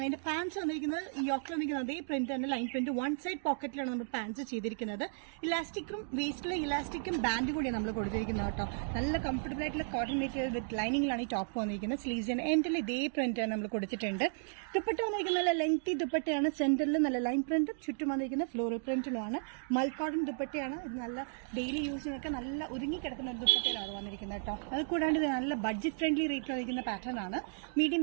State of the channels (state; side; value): silent; left; digital silence